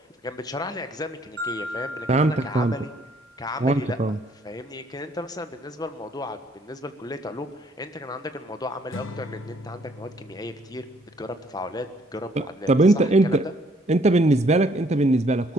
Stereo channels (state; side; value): normal; both; correlation 0.64